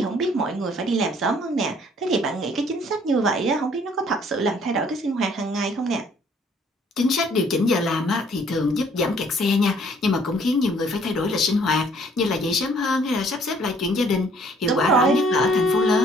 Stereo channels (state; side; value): normal; both; correlation 0.60